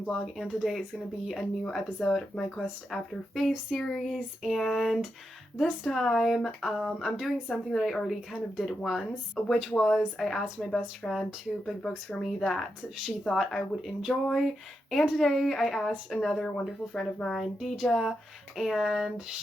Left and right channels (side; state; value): both; normal; correlation 0.86